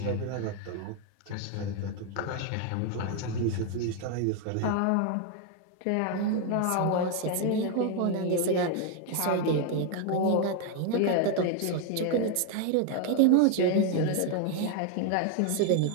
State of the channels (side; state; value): both; different; correlation 0.01